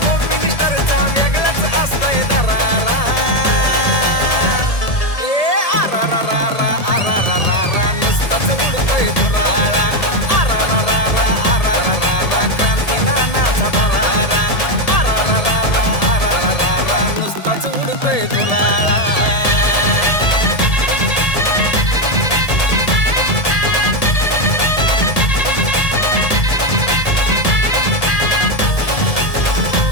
होम मिनिस्टरचा वेगळाच असतोय दरारा. आरा रा रा रा आरा रा रा रा नुसताच उडतोय धुराळा. आरा रा रा रा आरा रा रा रा क्रांती नानाचा दरारा. आरा रा रा रा आरा रा रा रा नुसताच उडतोय धुराळा.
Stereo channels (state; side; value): late; right; 1.7 ms